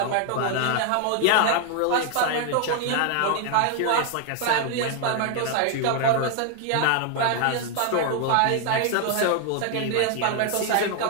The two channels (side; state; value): both; different; correlation 0.00